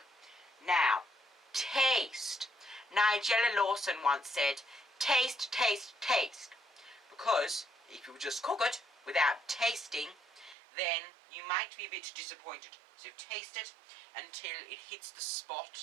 Now, taste. Nigella Lawson once said, taste, taste, taste. Because if you just cook it without tasting, then you might be a bit disappointed. So taste it until it hits the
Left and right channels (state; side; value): drops out; left; at 10.6 s